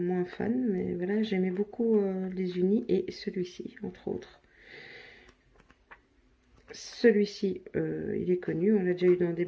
fan, mais voilà, j'aimais beaucoup les unis et celui-ci, entre autres. Celui-ci, il est connu. On l'a déjà eu dans des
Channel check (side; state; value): both; identical; correlation 1.00